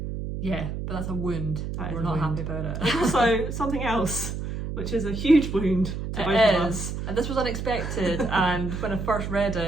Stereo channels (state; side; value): noise; right; hum, 5 dB below the sound